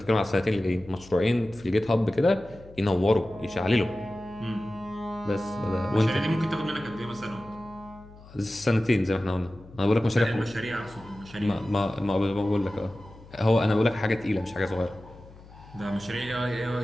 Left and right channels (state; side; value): noise; left; hum, 21 dB below the sound